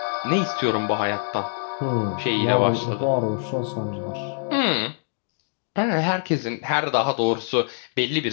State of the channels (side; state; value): right; silent; digital silence